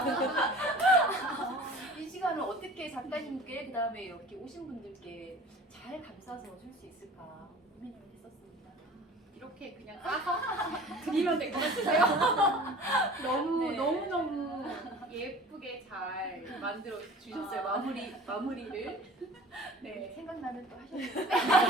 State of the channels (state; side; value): normal; both; correlation 0.43